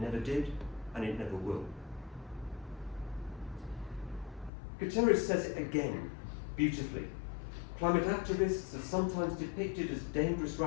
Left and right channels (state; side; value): drops out; right; at 4.5 s